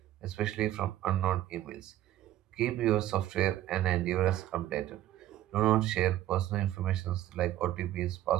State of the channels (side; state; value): left; quieter; 13.5 dB